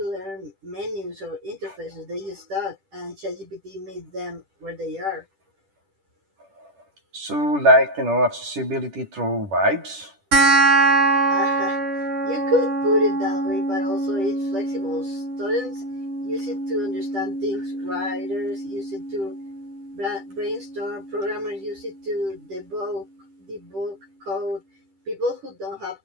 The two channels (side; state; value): left; late; 10 ms